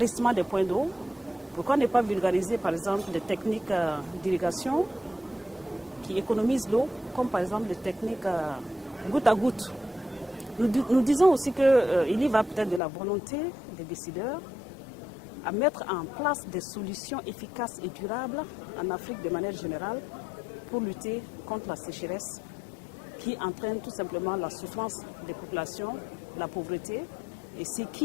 des points d'eau. Pourquoi ne pas vulgariser par exemple des techniques d'irrigation qui économisent l'eau, comme par exemple les techniques goutte à goutte. Nous disons aussi qu'il y va peut-être de la volonté des décideurs à mettre en place des solutions efficaces et durables en Afrique de manière générale pour lutter contre la sécheresse qui entraîne tout simplement la souffrance des populations, la pauvreté, et ce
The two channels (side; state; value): right; drops out; at 12.8 s